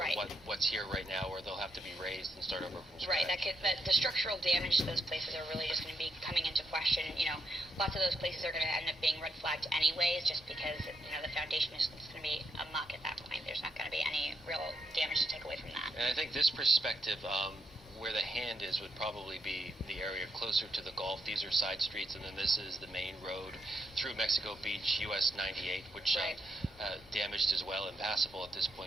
what's here right now, or they'll have to be raised and start over from scratch. Right. The structural damage to those places are really just going to be coming into question. You know, lots of those places are going to end up being red flagged anyways, just because the foundation is going to be amok at that point. There's not going to be any real damage to take away from that. And I think this perspective, where the hand is, would probably be the area closer to the Gulf. These are side streets, and then this is the main road through Mexico Beach, US 98, which damaged as well, impassable at this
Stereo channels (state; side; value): normal; both; correlation 0.80